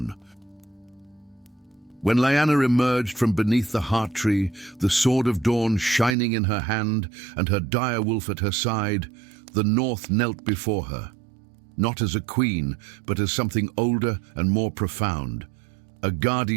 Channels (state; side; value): drops out; left; at 6.2 s